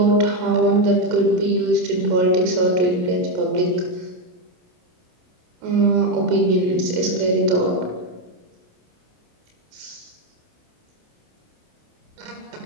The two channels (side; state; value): left; late; 28 ms